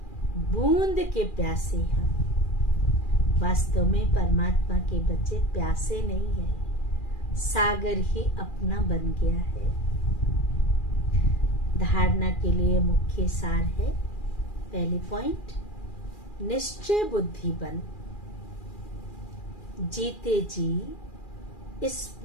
बूंद के प्यासे हम। वास्तव में परमात्मा के बच्चे प्यासे नहीं है, सागर ही अपना बन गया है। धारणा के लिए मुख्य सार है, पहली पॉइंट, निश्चय बुद्धि बन। जीते जी इस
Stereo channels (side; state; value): right; late; 2.4 ms